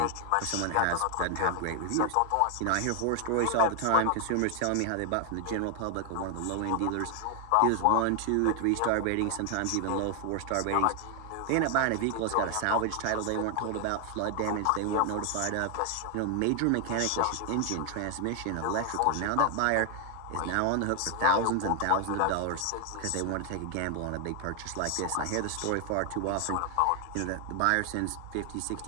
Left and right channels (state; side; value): different; both; correlation 0.00